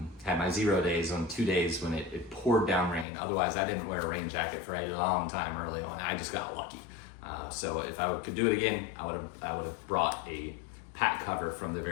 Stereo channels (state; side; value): drops out; right; at 3.1 s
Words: had my 0 days on 2 days when it poured down rain. Otherwise, I didn't wear a rain jacket for a long time early on. I just got lucky. So if I could do it again, I would have brought a pack cover from the